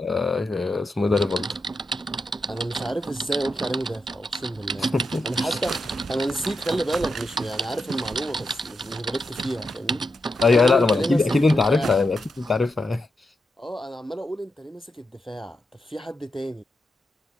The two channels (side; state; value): both; normal; correlation 0.86